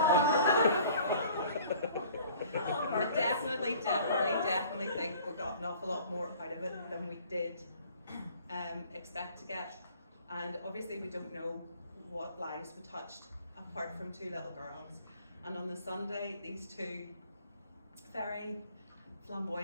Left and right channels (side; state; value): both; inverted; correlation -0.51